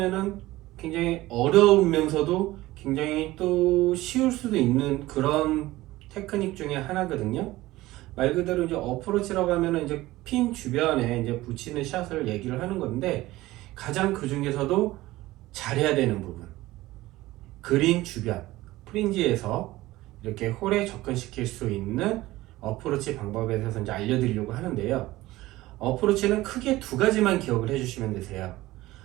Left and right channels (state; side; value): quieter; left; 17.7 dB